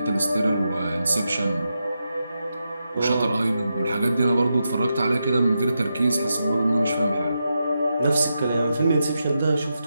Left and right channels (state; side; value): inverted; both; correlation -0.87